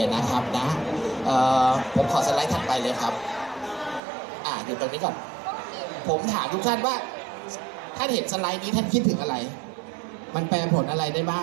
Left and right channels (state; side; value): drops out; left; at 4.0 s